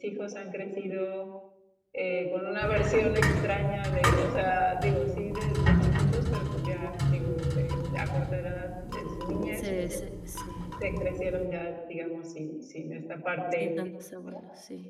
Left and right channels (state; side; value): identical; both; correlation 1.00